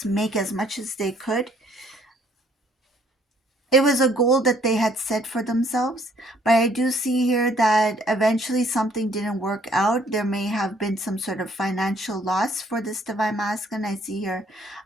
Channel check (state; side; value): normal; both; correlation 0.63